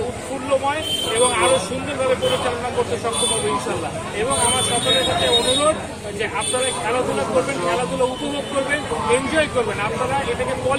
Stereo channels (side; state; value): both; identical; correlation 1.00